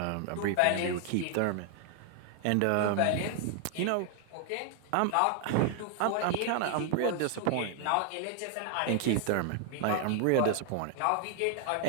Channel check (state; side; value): different; both; correlation 0.00